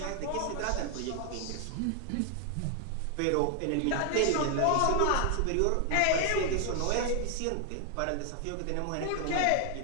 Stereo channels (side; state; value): both; different; correlation 0.00